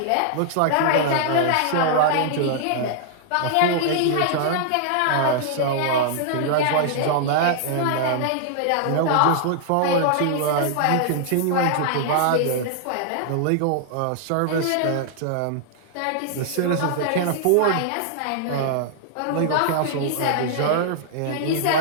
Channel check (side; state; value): both; different; correlation -0.01